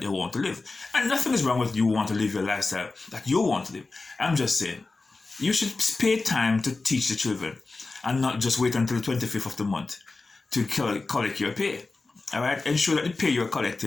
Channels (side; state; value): right; quieter; 3.6 dB